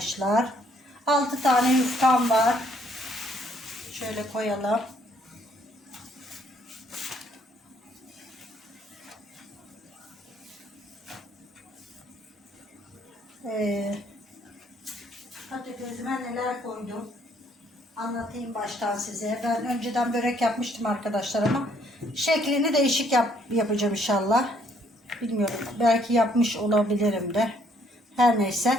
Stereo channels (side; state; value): both; normal; correlation 0.66